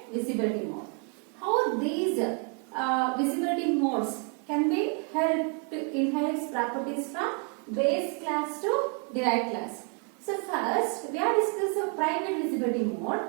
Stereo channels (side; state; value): left; quieter; 37.6 dB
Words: visibility mode. How these visibility modes can be helped to inherit properties from base class to derived class. So first, we are discussing private visibility mode.